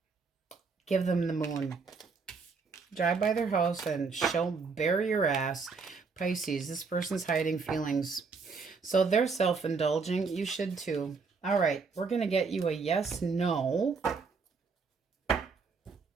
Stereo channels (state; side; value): quieter; left; 4.8 dB